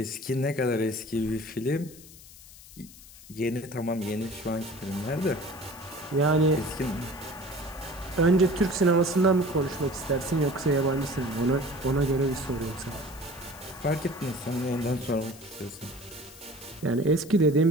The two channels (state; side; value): noise; left; hiss, 19 dB below the sound